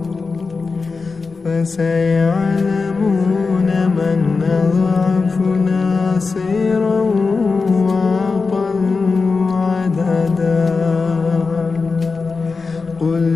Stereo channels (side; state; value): right; quieter; 4.4 dB